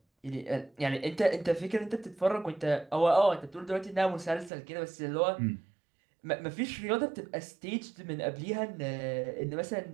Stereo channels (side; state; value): left; drops out; at 4.5 s